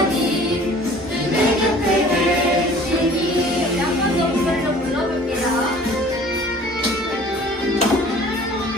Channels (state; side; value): normal; both; correlation 0.49